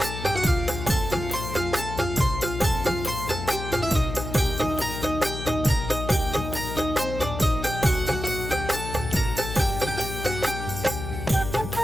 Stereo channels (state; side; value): noise; left; hum, 7 dB below the sound